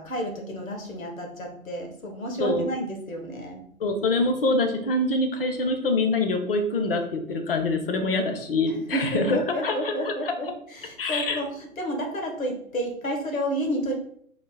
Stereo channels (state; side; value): normal; both; correlation 0.12